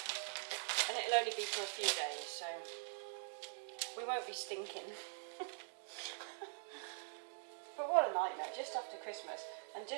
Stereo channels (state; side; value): silent; left; digital silence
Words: And it'll only be for a few days, so we won't be stinking. But what a nightmare, just after Christmas. And